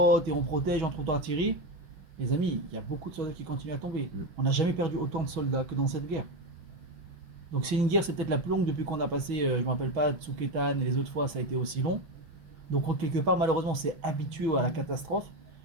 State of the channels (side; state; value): left; late; 6.2 ms